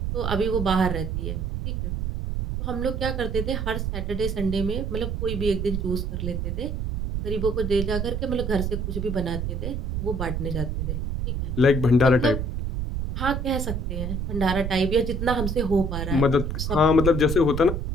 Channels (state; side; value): noise; right; rumble, 2 dB below the sound